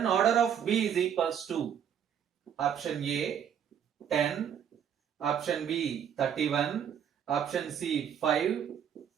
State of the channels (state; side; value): quieter; left; 8.6 dB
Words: order of B is equals to option A 10, option B 31, option C 5,